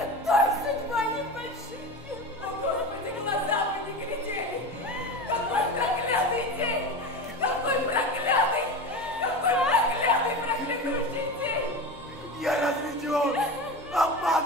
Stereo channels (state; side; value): normal; both; correlation 0.27